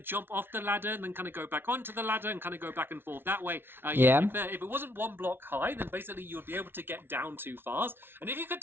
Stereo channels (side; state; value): left; late; 0.11 ms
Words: jump off the ladder and then kind of go back onto the ladder and kind of go back and forth that way. Yeah. If it wasn't 1 block high, then basically you would be able to get down too fast. And if you could